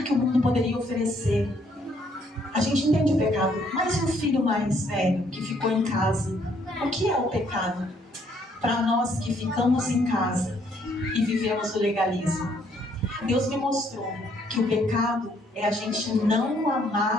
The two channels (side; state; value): both; normal; correlation 0.68